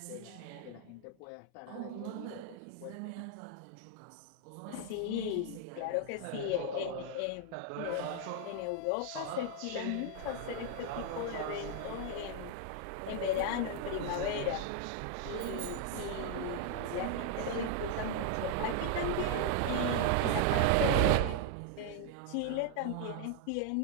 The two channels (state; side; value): different; both; correlation 0.00